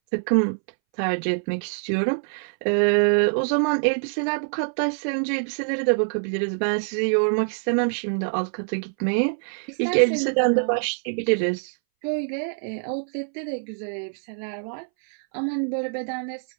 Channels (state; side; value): silent; left; 62 dB below the other